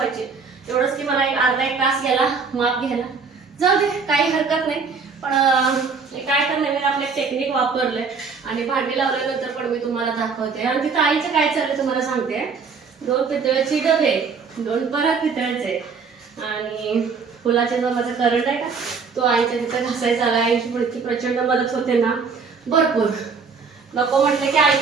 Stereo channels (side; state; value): left; quieter; 5.2 dB